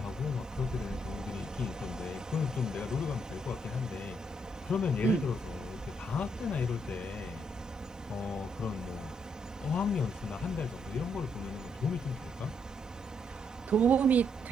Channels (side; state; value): both; normal; correlation 0.75